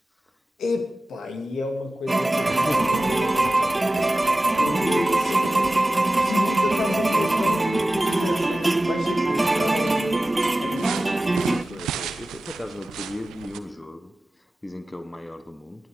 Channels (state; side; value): normal; both; correlation 0.96